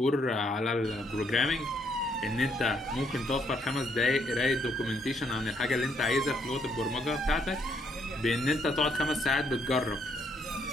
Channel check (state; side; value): normal; both; correlation 0.72